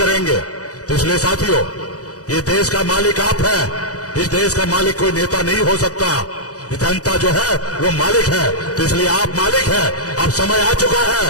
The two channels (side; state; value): right; late; 0.67 ms